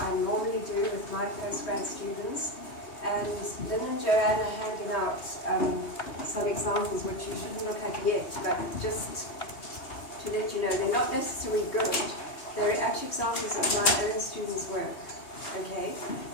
I normally do with my postgrad students. And Lynn and Joanne are handing out some examples which you shouldn't look at yet, but just to let you know, they're not necessarily good. They're actually examples of my own students' work, okay,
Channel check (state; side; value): late; right; 3.2 ms